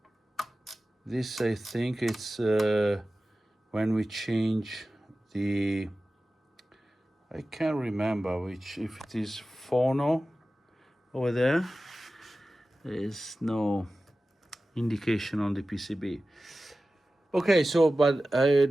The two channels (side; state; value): both; normal; correlation 0.95